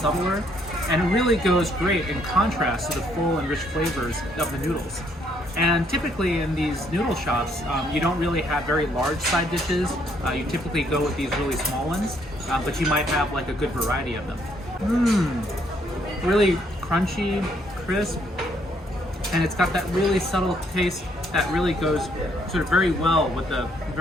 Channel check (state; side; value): normal; both; correlation 0.69